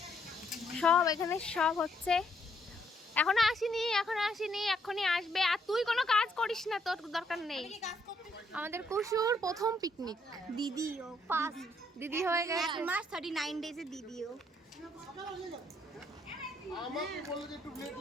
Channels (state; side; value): normal; both; correlation 0.71